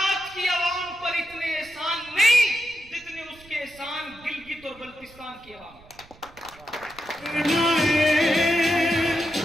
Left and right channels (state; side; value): noise; right; rumble, 25 dB below the sound